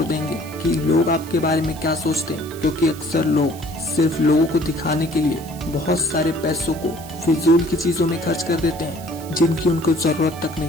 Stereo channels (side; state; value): right; noise; hiss, 18 dB below the sound